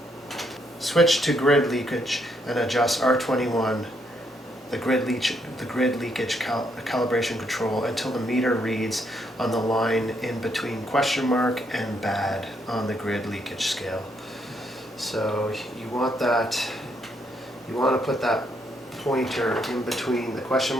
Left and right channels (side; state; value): both; normal; correlation 0.74